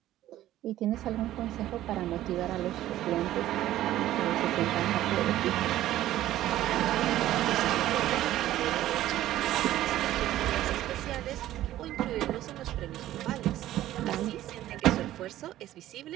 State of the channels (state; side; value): quieter; left; 13.9 dB